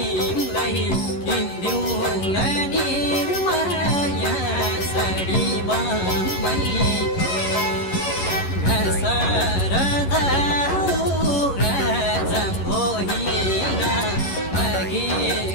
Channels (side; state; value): right; late; 11 ms